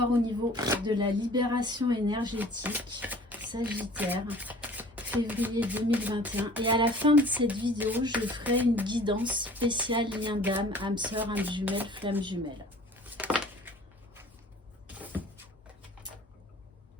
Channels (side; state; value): both; normal; correlation 0.48